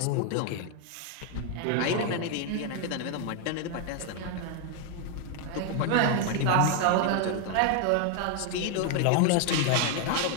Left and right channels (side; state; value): both; different; correlation 0.00